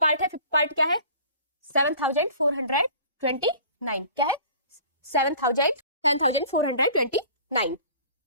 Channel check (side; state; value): both; inverted; correlation -0.46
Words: है। फिफ्थ पार्ट क्या है? 7429। क्या है? 7429।